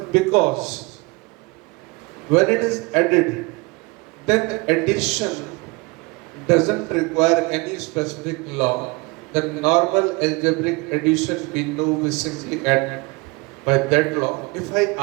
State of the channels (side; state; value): left; quieter; 26.0 dB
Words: when it is added, then addition doesn't require any specific law. The normal algebraic addition we know we simply add by that law. If I